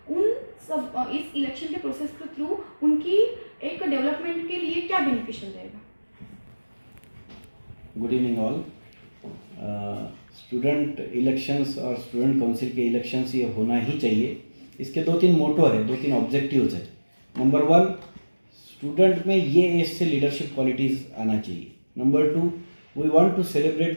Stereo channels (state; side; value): inverted; both; correlation -1.00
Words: उन सब इस इलेक्शन के प्रोसेस के थ्रू उनकी एक डेवलपमेंट के लिए क्या बेनिफिशियल रहेगा? Good evening all. Student elections और स्टूडेंट काउंसिल के इलेक्शंस ये होना ही चाहिए। इसके दो तीन मोटो है, दो तीन ऑब्जेक्टिव्स है। नंबर 1, स्टूडेंट में ये एज से लीडरशिप क्वालिटीज़ आना चाहिए। Number 2, we want to